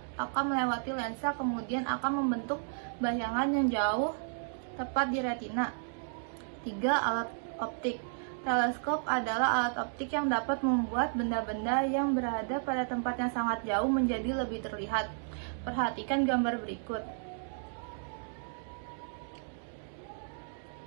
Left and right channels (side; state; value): left; silent; digital silence